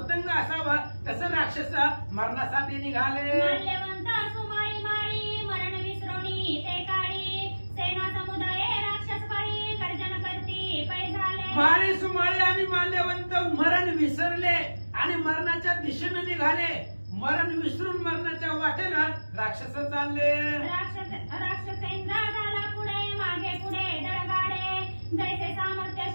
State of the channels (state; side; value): inverted; both; correlation -1.00